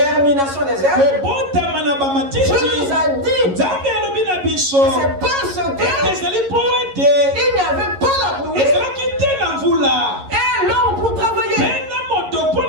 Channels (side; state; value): left; late; 11 ms